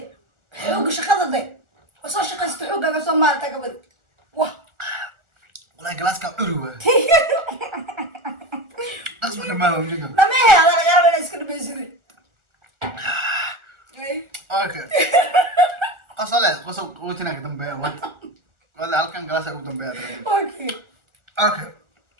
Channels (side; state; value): left; late; 1.4 ms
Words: xoog shaqada day soo shaqaysta xoogaaga Soomaalida ka wada wah والله جلاسك عروة أصبح ما هو مجنون dhamaya ala laga yaabaa iska dhamaysiday أوكي قصة قوتنا قدام بيا وات ولا هالكن جلاسك قدام بيا okay أوكي